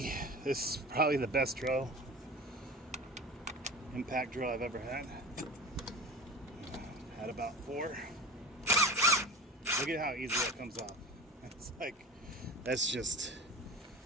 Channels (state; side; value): normal; both; correlation 0.32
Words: This is probably the best drill, impact drill I've ever had. Had about 4. Look at how easy that comes off. It's like, that's just,